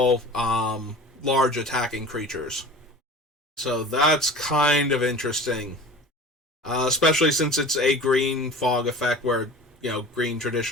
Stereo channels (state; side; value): normal; both; correlation 0.39